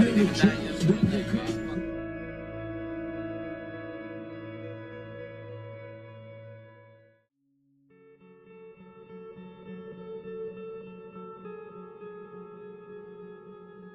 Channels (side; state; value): both; identical; correlation 1.00